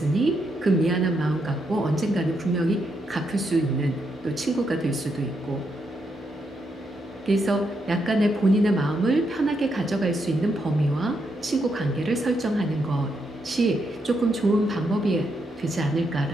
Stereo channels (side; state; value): both; normal; correlation 0.80